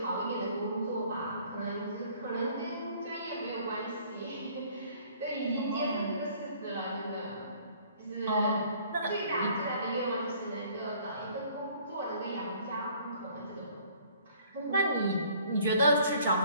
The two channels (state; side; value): inverted; both; correlation -0.57